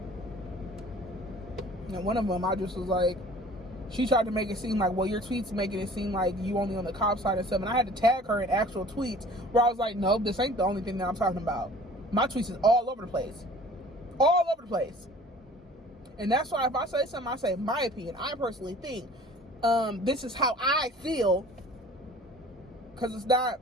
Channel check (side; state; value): both; normal; correlation 0.48